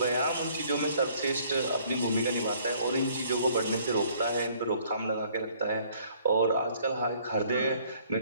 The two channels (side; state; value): both; inverted; correlation -0.60